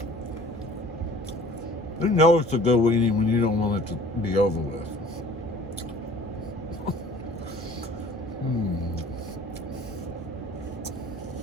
You know it's a good weenie when you don't want it to be over with.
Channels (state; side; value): normal; both; correlation 0.50